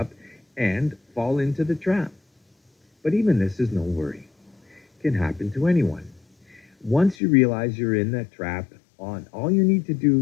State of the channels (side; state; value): right; drops out; at 7.2 s